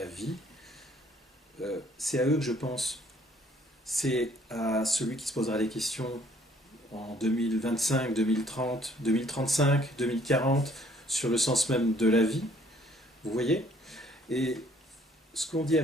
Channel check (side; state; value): both; normal; correlation 0.61